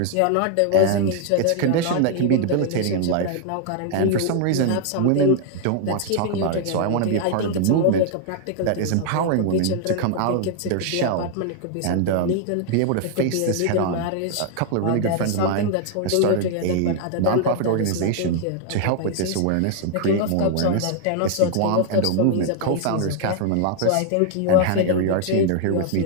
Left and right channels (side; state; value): both; different; correlation 0.00